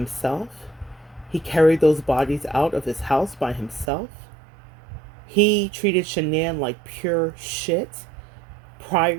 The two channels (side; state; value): left; drops out; at 3.9 s